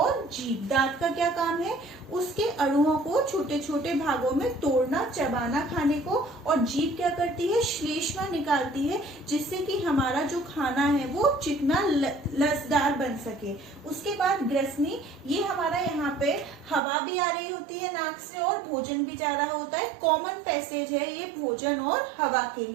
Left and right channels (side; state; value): left; drops out; at 16.8 s